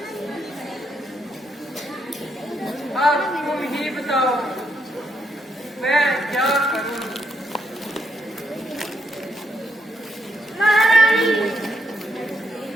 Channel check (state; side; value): normal; both; correlation 0.78